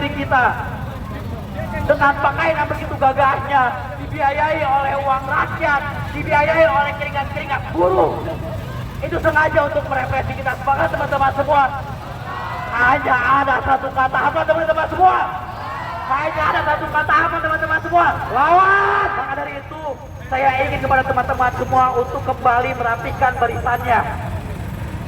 kita, dengan pakaian yang begitu gagahnya, dibiayai oleh uang rakyat, dibiayai oleh keringat-keringat buruh. Itu sengaja untuk merepresi kita. Semangat teman-teman semua. Hanya ada satu kata, apa teman-teman semua? Kayaknya ada satu kata apa teman-teman semua? Lawan! Maka dari itu, saya ingin kepada teman-teman semua untuk kembali merapikan barisannya.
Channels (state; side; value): identical; both; correlation 1.00